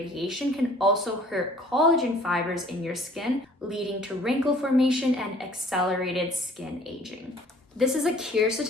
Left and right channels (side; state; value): both; normal; correlation 0.54